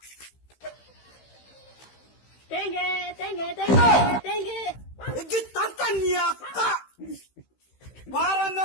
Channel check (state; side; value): late; right; 15 ms